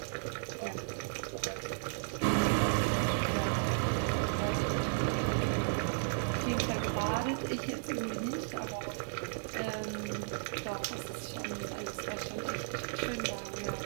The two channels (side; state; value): left; silent; digital silence